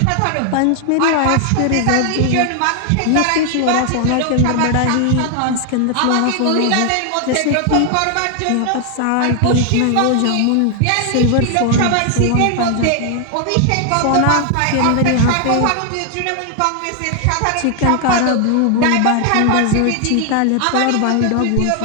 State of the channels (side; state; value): both; different; correlation 0.00